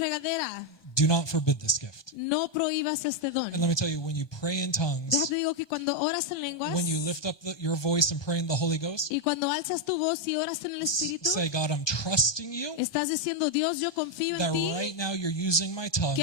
Do not forbid this gift. No prohíbas este don. And let me tell you, when you pray in tongues, Déjate digo que cuando oras en lenguas when you lift up your voice and pray in the Holy Ghost, y cuando alzas tu voz y oras en el Espíritu, say, God, I'm trusting you estás diciendo, Dios, yo confío that en ti, right now you're using my tongues que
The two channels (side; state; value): right; late; 1.2 ms